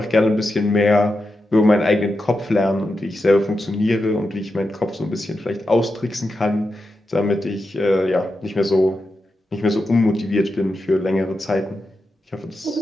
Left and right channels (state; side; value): normal; both; correlation 0.89